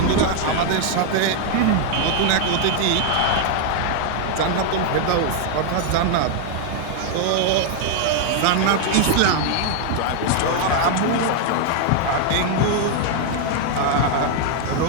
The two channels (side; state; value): both; different; correlation 0.00